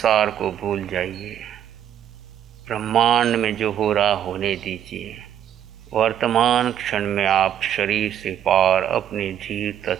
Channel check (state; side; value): quieter; left; 10.1 dB